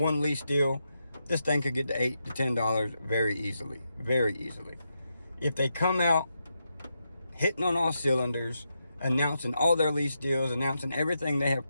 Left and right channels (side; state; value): both; inverted; correlation -0.84